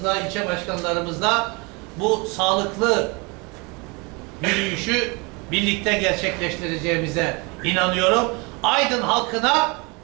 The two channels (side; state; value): left; quieter; 28.7 dB